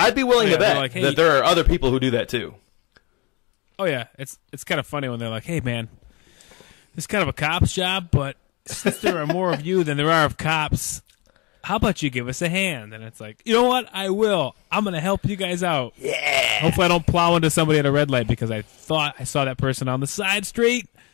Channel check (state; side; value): quieter; right; 27.0 dB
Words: be willing to bet like, hey, that there are other people who do that too. Oh yeah, it's kind of funny when they're like, "Hey man, this is kind of a cop's job, but since there are more of you than there are of cops, how about you give us a hand?" And it's like, you know what? I will. I'm going to help you guys out. Yeah. Hopefully I don't plow into somebody at a red light because I thought I saw that person on the side street.